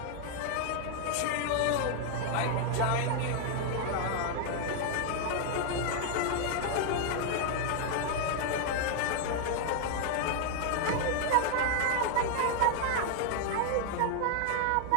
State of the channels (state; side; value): different; both; correlation 0.00